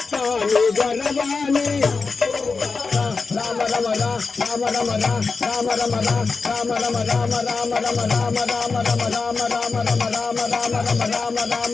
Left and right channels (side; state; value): right; quieter; 4.5 dB